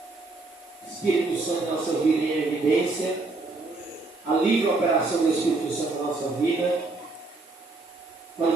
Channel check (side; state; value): left; quieter; 3.4 dB